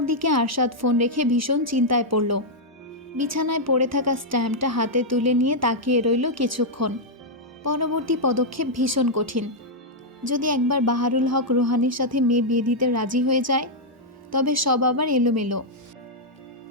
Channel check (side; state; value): both; normal; correlation -0.04